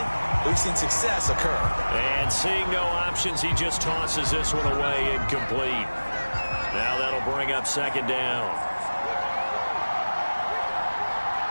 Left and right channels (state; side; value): inverted; both; correlation -1.00